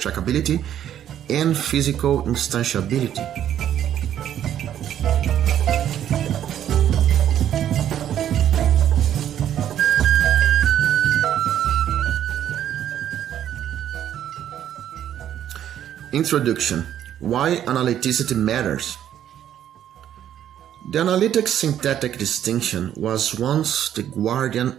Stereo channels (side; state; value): left; quieter; 10.6 dB